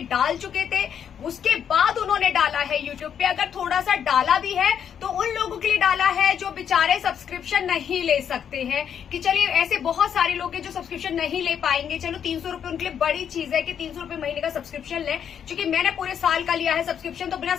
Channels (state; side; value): quieter; right; 8.4 dB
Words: डाल चुके थे, उसके बाद उन्होंने डाला है यूट्यूब पे। अगर थोड़ा सा डाला भी है तो उन लोगों के लिए डाला है जो बेचारे सब्सक्रिप्शन नहीं ले सकते हैं, कि चलिए ऐसे बहुत सारे लोग हैं जो सब्सक्रिप्शन नहीं ले पाएंगे, चलो 300 रुपए उनके लिए बड़ी चीज है कि 300 रुपए महीने का सब्सक्रिप्शन लें। क्योंकि मैंने पूरे साल का लिया है सब्सक्रिप्शन, तो बिना